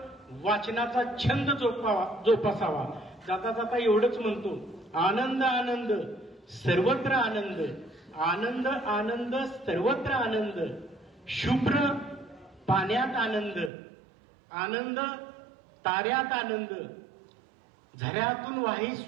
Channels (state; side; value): drops out; left; at 13.7 s